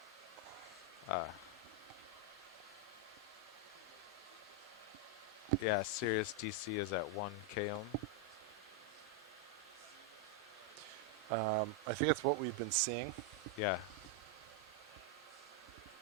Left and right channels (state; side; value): normal; both; correlation 0.00